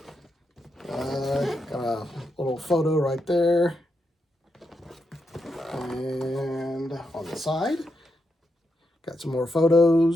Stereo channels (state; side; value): normal; both; correlation 0.84